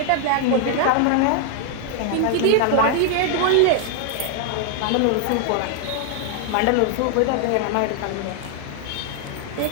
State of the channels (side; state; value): both; different; correlation 0.00